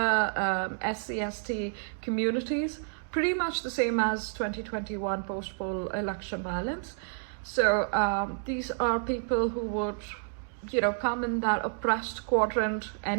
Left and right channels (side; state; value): left; silent; digital silence